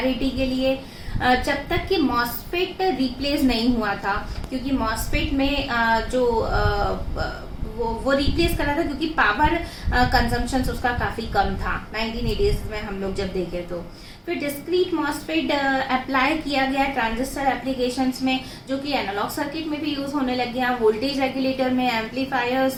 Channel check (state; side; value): identical; both; correlation 1.00